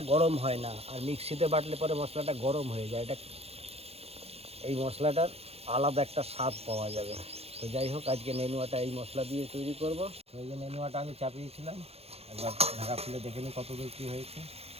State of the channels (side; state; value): left; late; 0.29 ms